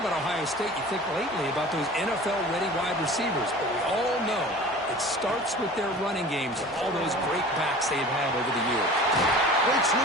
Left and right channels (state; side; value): normal; both; correlation 0.41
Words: Ohio State, you think lately about those NFL-ready wide receivers. But we all know it starts with their running games and all those great backs they've had over the years. Breaks